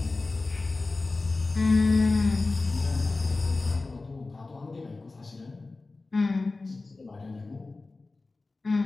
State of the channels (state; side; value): quieter; right; 3.5 dB